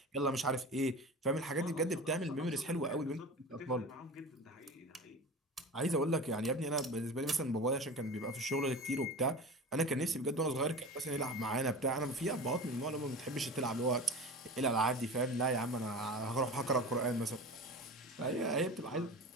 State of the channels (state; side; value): normal; both; correlation 0.32